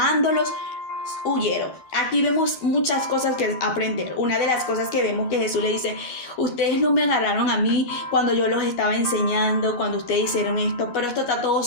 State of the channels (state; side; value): late; right; 12 ms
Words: huyeron. Aquí vemos muchas cosas que aprender. Una de las cosas que vemos que Jesús le dice: ustedes no me agarraron a mí cuando yo los estaba enseñando, cuando ustedes hicieron esto, pero esto está todo